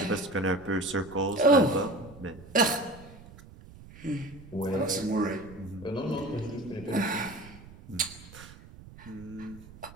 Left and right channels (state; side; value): noise; right; rumble, 18 dB below the sound